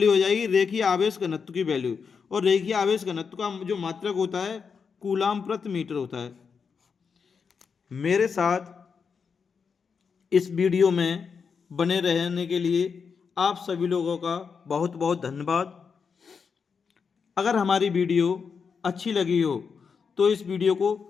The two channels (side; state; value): right; quieter; 5.9 dB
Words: हो जाएगी? रेखीय आवेश घनत्व की वैल्यू। और रेखीय आवेश घनत्व का जो मात्रक होता है कूलाम प्रति मीटर होता है। मेरे साथ इस वीडियो में बने रहने के लिए आप सभी लोगों का बहुत बहुत धन्यवाद। अगर हमारी वीडियो अच्छी लगी हो तो इस वीडियो को